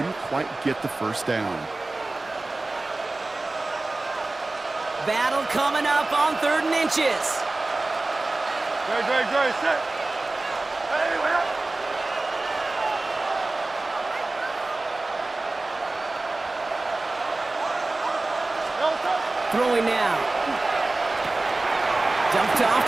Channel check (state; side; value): quieter; left; 3.1 dB